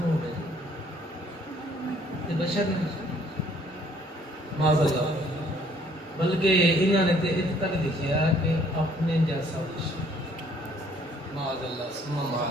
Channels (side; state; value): both; normal; correlation 0.61